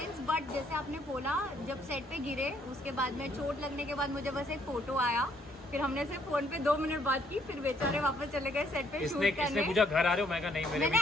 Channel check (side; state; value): both; normal; correlation 0.68